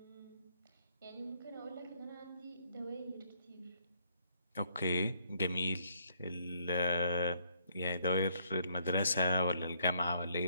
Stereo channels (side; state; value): both; inverted; correlation -0.70